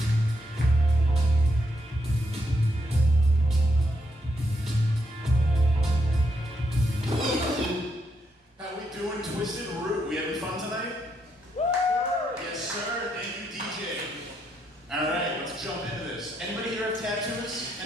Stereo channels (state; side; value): normal; both; correlation 0.78